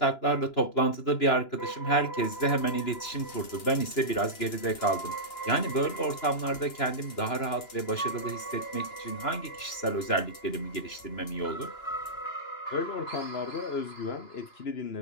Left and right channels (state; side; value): late; right; 2.9 ms